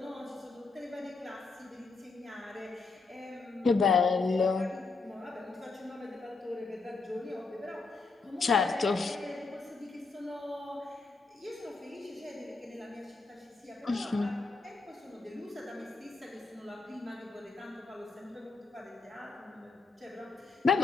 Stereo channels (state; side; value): quieter; right; 4.1 dB